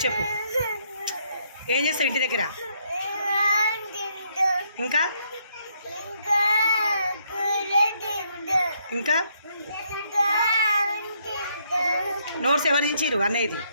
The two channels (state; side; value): inverted; both; correlation -0.72